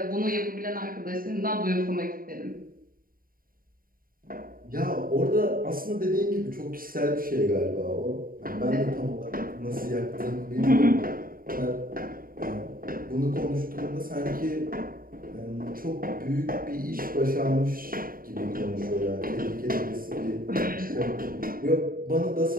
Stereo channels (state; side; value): late; left; 0.41 ms